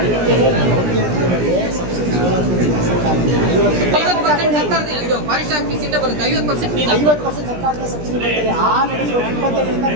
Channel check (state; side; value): late; left; 17 ms